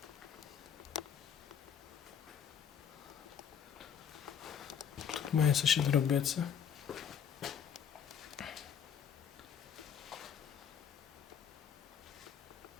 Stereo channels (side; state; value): right; quieter; 8.0 dB